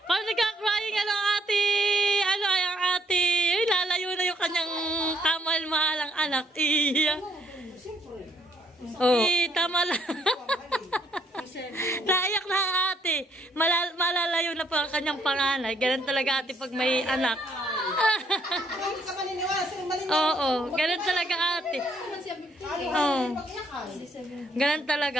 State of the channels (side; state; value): both; normal; correlation 0.69